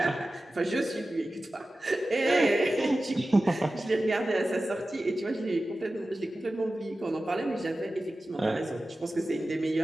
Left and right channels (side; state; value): both; normal; correlation 0.95